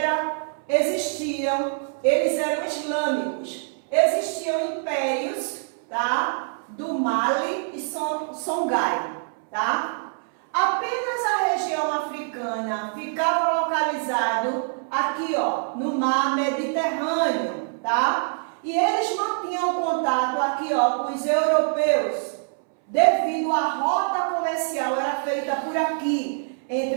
eles eram islâmicos. Existiam impérios, tá? Do Mali e Songhai, tá? Apenas a região africana ficava localizado aqui, ó, no mar Mediterrâneo, tá? E eles mantinham contato aqui, ó, com os europeus, devido à rota comercial era feita por aqui,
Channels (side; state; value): left; silent; 62 dB below the other